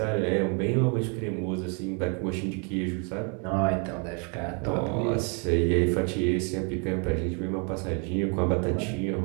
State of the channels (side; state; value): left; quieter; 36.8 dB